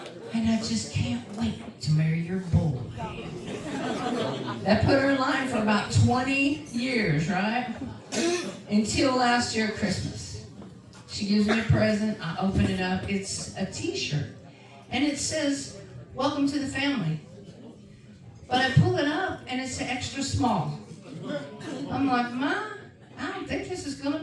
And I just can't wait to marry your boy." That put her in line for about 20 years, right? Until last year Christmas. She gives me a present, I open it up, it's a t-shirt. And it says, "Welcome to the family." But I pull it up and it's extra small. I'm like, "Ma, I don't think this is gonna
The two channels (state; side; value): identical; both; correlation 1.00